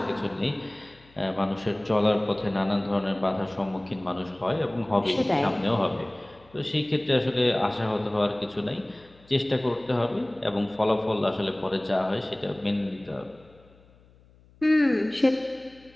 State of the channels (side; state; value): left; noise; hum, 28 dB below the sound